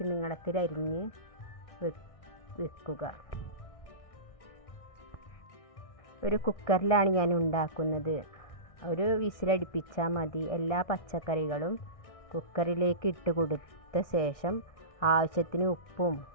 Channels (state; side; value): late; right; 1.6 ms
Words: നീളത്തിൽ അരിഞ്ഞ് വെക്കുക. ഒരു കുക്കറിലാണ് ഞാൻ ഉണ്ടാക്കുന്നത്. ഒരു വിസിലടിപ്പിച്ചാൽ മതി. എല്ലാ പച്ചക്കറികളും കുക്കറിലേക്ക് ഇട്ട് കൊടുത്ത ശേഷം ആവശ്യത്തിന് ഉപ്പും